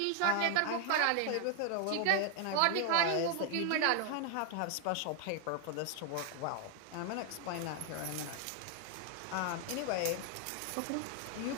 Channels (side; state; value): both; different; correlation 0.00